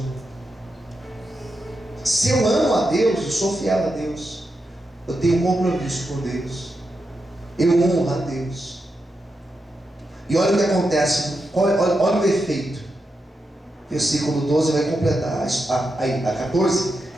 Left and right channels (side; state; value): both; normal; correlation 0.87